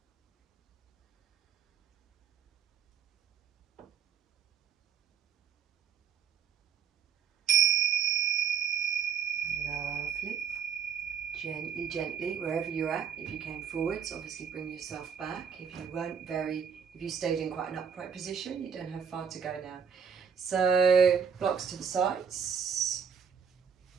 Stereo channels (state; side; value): quieter; left; 7.3 dB